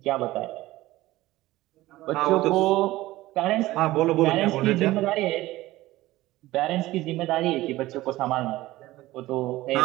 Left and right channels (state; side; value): quieter; left; 17.3 dB